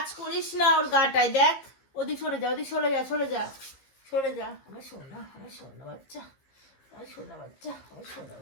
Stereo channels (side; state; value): right; late; 15 ms